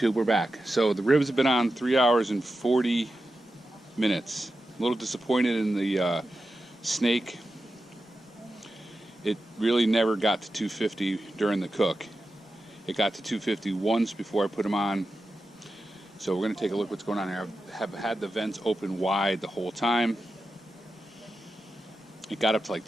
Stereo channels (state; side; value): normal; both; correlation 0.91